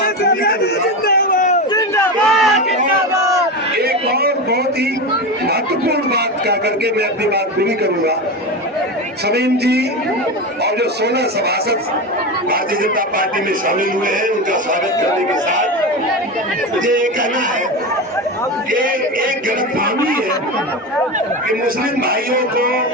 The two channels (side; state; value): both; normal; correlation 0.21